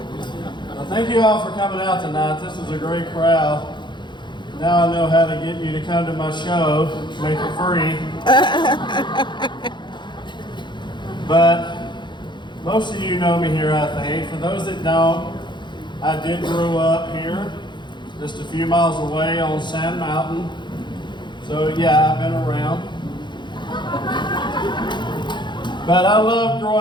thank you all for coming out tonight. This is a great crowd. Now I know how to get you to come to my show, make it free. But most of you know me here, I think. For those that don't, I did grow up here, just a few miles away on Sand Mountain. So yeah, I've been around. But I love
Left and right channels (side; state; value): right; late; 0.22 ms